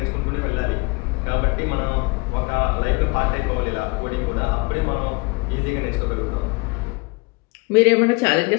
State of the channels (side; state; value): right; quieter; 26.9 dB